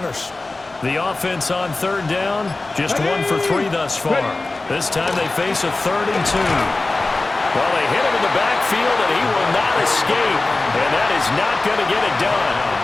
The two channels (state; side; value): quieter; right; 3.2 dB